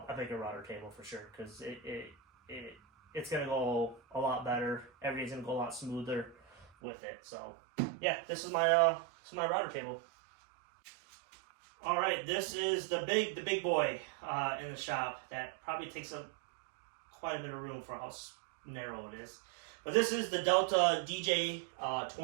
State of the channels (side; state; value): left; drops out; at 6.7 s